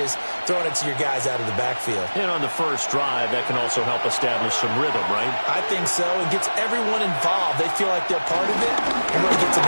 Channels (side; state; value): both; inverted; correlation -1.00